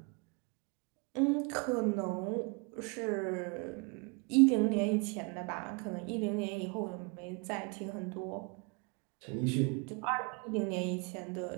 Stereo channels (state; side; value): quieter; left; 32.0 dB